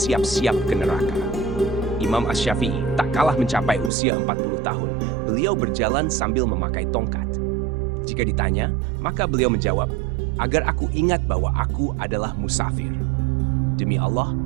ke neraka. Imam Asy-Syafi'i tak kalah mencapai usia 40 tahun. Beliau berjalan sambil memakai tongkat. Jika ditanya, maka beliau menjawab, agar aku ingat bahwa aku adalah musafir. Demi Allah,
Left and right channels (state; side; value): drops out; left; at 3.9 s